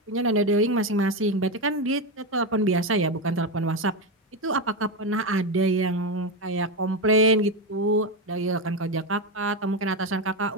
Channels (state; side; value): normal; both; correlation 0.12